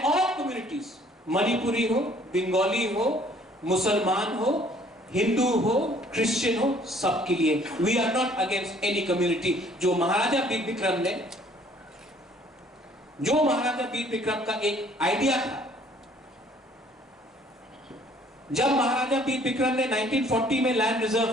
all communities, Manipuri हो, बंगाली हो, मुसलमान हो, हिंदू हो, क्रिश्चियन हो, सबके लिए। We are not against any community. जो महाराजा वीर विक्रम का एक आइडिया था, जब महाराजा वीर विक्रम ने 1940 में लैंड रिजर्व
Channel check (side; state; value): both; normal; correlation 0.58